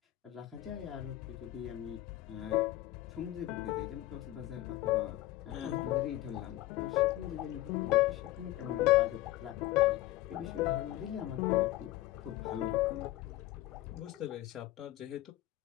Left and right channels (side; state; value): right; quieter; 15.9 dB